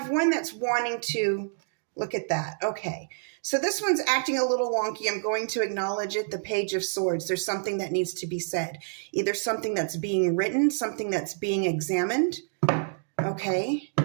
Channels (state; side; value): silent; left; digital silence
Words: one that's wanting to look at that. Okay. So this one's acting a little wonky. I'm going to acknowledge it. The Page of Swords. There's something that needs to be said. Either something that's being written, something that's being examined. Okay.